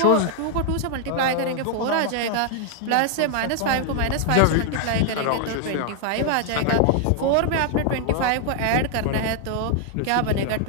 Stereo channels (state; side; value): different; both; correlation 0.00